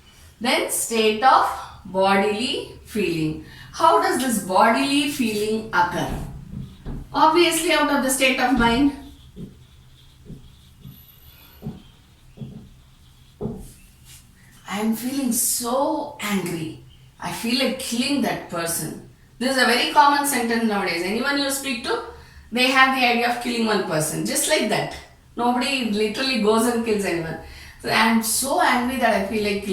Then state of bodily feeling. How does this bodily feeling occur? Obviously out of the state of mind. I am feeling so angry. I feel like killing that person. This is a very common sentence nowadays. Anyone you speak to, they have the idea of killing one person. Just like that. Nobody literally goes and kills anyone. So I am so angry that I feel like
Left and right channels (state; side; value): identical; both; correlation 1.00